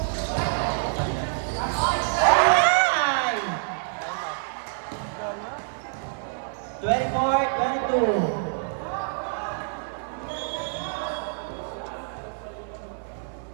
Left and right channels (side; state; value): left; silent; 57 dB below the other